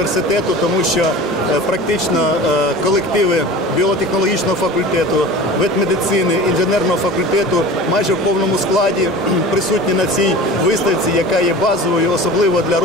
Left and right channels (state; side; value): noise; right; hum, 26 dB below the sound